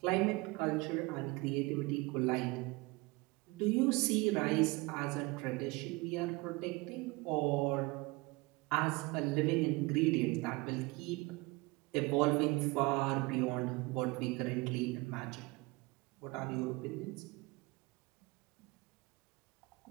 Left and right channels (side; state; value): left; quieter; 24.4 dB